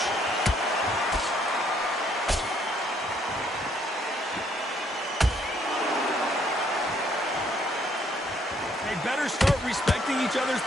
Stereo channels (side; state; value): both; normal; correlation 0.67